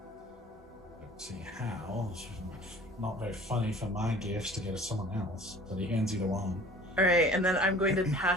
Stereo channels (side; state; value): both; normal; correlation 0.48